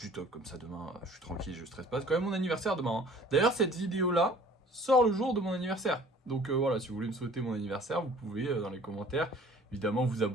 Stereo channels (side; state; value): both; normal; correlation 0.50